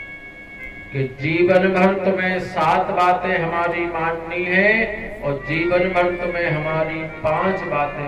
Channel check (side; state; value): both; identical; correlation 1.00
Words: कि जीवन भर तुम्हें 7 बातें हमारी माननी है और जीवन भर तुम्हें हमारी 5 बातें